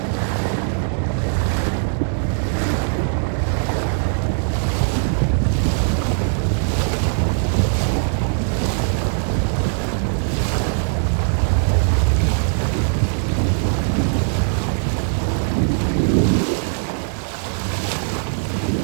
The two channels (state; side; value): silent; left; 65 dB below the other